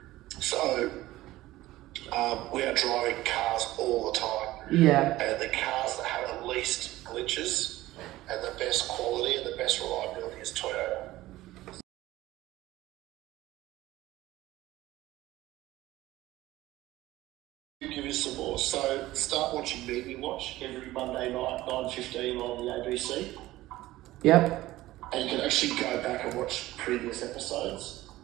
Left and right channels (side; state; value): left; quieter; 16.7 dB